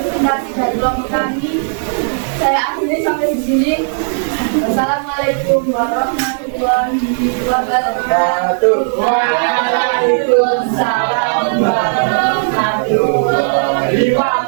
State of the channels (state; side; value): silent; left; digital silence